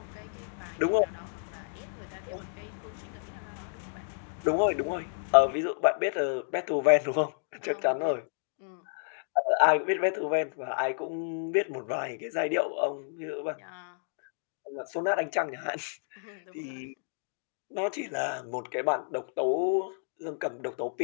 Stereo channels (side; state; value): right; silent; digital silence